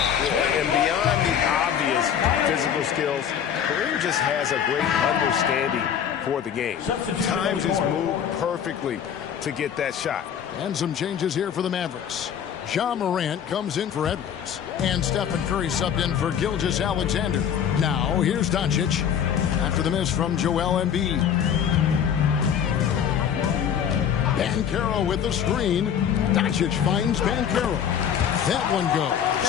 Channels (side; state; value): right; quieter; 8.6 dB